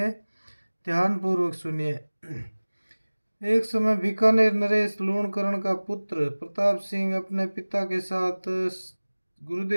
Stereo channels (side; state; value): both; inverted; correlation -1.00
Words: ध्यान पूर्वक सुनिए। एक समय बीकानेर नरेश लूणकरण का पुत्र प्रताप सिंह अपने पिता के साथ